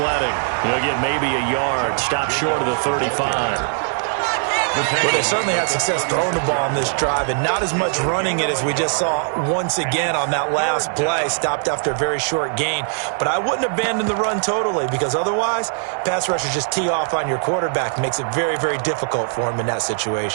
He'll get maybe a yard. Stop short of the 35. Well, they certainly had success throwing the ball on this drive, and not as much running it as we just saw once again on that last play. Stopped after a very short gain. But I wouldn't abandon the run totally, because otherwise, pass rushers just tee off on your quarterback. Makes it very, very difficult for him in that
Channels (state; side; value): silent; left; 57 dB below the other